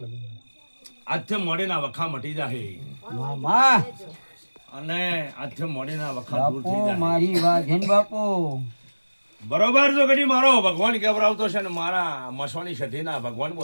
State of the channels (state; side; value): inverted; both; correlation -1.00